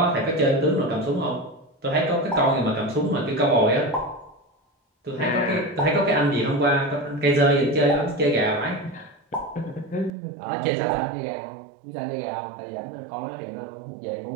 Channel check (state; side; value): drops out; left; at 10.1 s